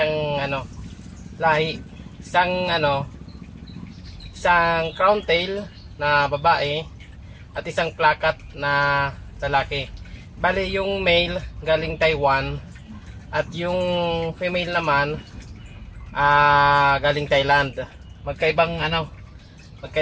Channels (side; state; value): both; identical; correlation 1.00